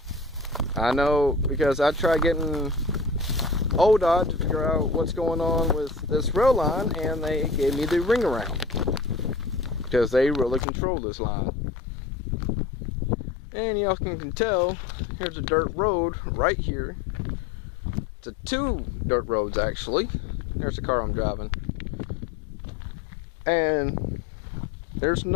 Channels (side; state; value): right; drops out; at 10.7 s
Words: I know because I tried getting ODOT to figure out what's going on with this rail line, and they gave me the ring around because they really control this line. And y'all can tell, here's a dirt road right here. It's a two dirt roads actually. There's the car I'm driving. And there's